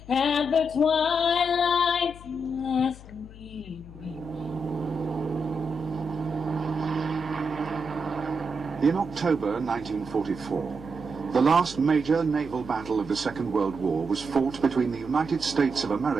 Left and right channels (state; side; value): noise; left; hum, 17 dB below the sound